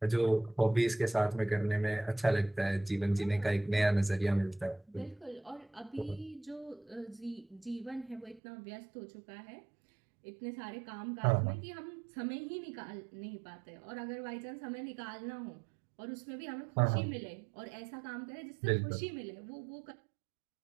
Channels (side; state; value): left; drops out; at 8.4 s